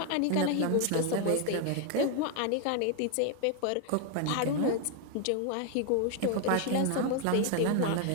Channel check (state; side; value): different; both; correlation 0.01